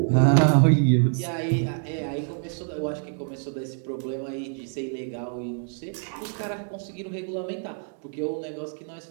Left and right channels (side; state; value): left; silent; 61 dB below the other